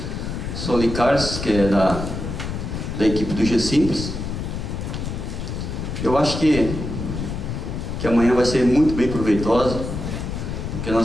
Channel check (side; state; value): left; noise; rumble, 5 dB below the sound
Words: Soli Carlos, que é da equipe do G-Simples. Eu acho que amanhã vai ser muito bem proveitosa, porque